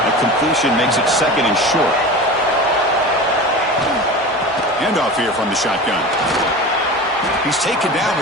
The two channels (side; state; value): both; normal; correlation 0.32